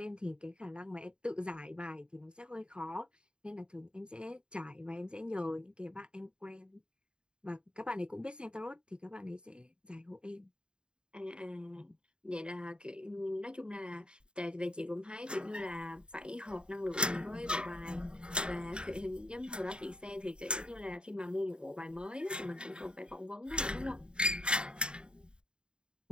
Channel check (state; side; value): late; left; 0.051 ms